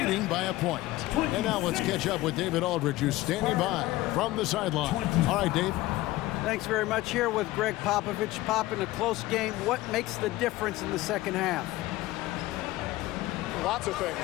by a point. And now let's catch up with David Aldridge, who's standing by from the sideline. All right, Dave. Thanks very much. Here with Greg Popovich. Pop, in a close game, what makes the difference in the second half? Lots of things,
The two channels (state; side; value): quieter; right; 17.7 dB